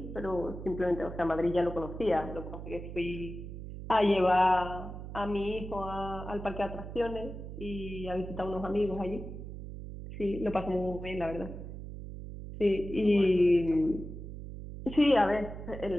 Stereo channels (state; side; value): noise; right; hum, 10 dB below the sound